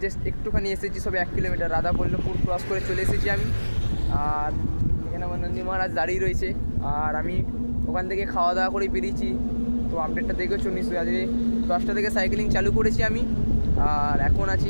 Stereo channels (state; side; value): inverted; both; correlation -1.00